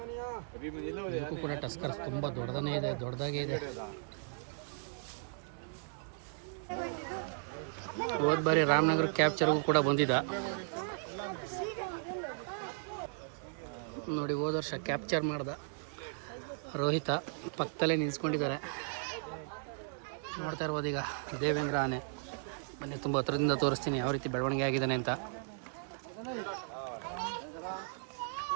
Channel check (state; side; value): silent; left; 54 dB below the other